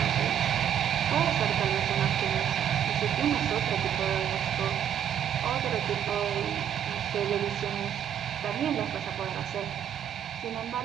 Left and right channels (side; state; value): left; quieter; 9.6 dB